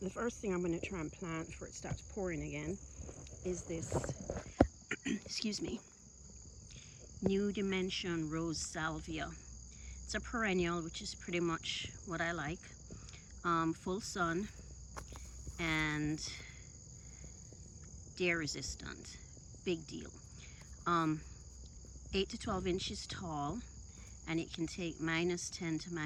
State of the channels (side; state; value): both; identical; correlation 1.00